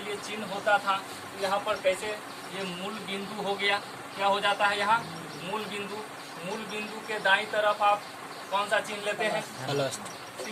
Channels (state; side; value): identical; both; correlation 1.00